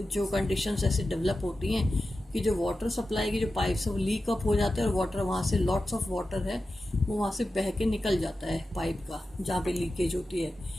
जो कंडीशंस ऐसे डेवलप होती हैं कि जो वाटर सप्लाई की जो पाइप्स है वो लीक अप हो जाते हैं और वाटर वहाँ से लॉट्स ऑफ वाटर है वो वहाँ से बह के निकल जाता है पाइप का जहाँ पे लीकेज होती है.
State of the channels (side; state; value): both; normal; correlation 0.93